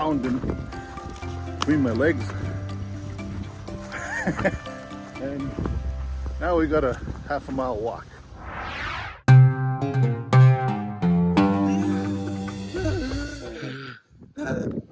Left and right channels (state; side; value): identical; both; correlation 1.00